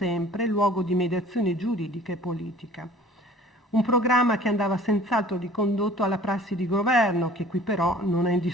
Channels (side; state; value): both; normal; correlation 0.49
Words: luogo di mediazione giuridica e politica. Un programma che andava senz'altro ricondotto alla prassi di governo, che qui però non è in